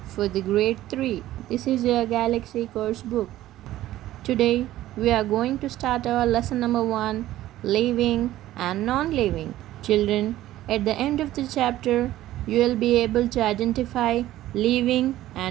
for the grade 3. This is your Galaxy course book. Today we are going to start our lesson number 1, living and non-living. Children, at the end of the chapter you will be able to identify living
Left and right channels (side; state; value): left; quieter; 14.6 dB